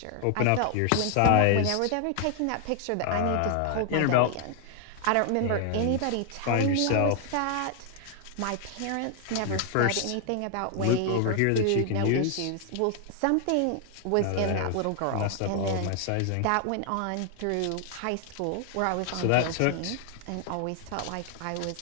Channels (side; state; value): both; different; correlation 0.00